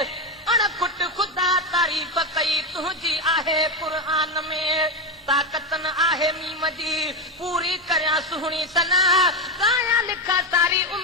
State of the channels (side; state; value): both; normal; correlation 0.11